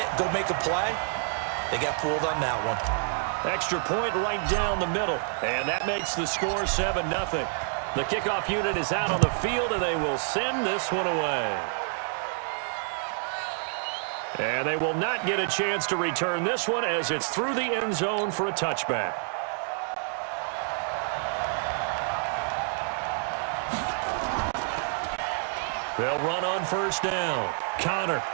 it, go make a play. They got fooled on that one. Extra point right down the middle, and that makes the score 7-0. The kickoff unit is out on the field, and they will send this one away. And they will not get a chance to return this one as it's through the end zone for a touchback. They'll run on first down. Connor,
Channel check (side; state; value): left; silent; 59 dB below the other